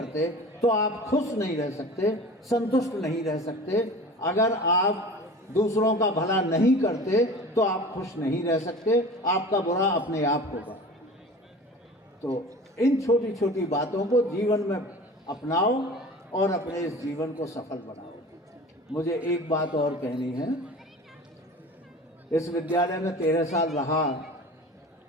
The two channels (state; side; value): normal; both; correlation 0.39